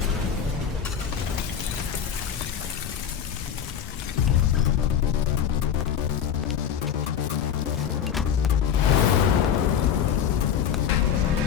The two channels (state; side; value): quieter; right; 8.4 dB